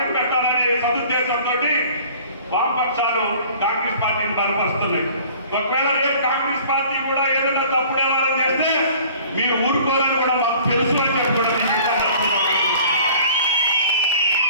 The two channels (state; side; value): inverted; both; correlation -0.49